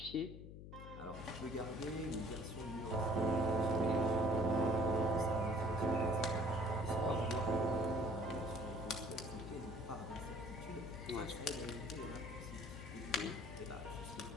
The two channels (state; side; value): noise; left; hum, 12 dB below the sound